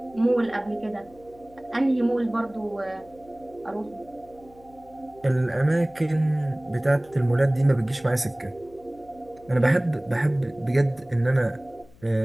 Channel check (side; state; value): left; noise; hum, 26 dB below the sound